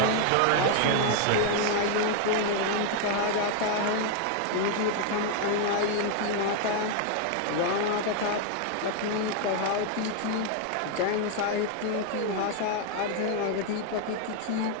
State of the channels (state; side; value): different; both; correlation 0.00